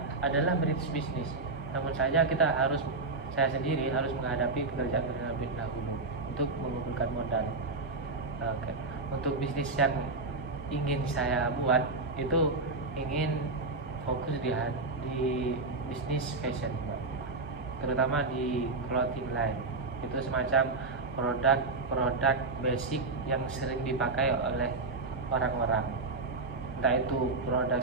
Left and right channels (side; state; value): left; quieter; 3.6 dB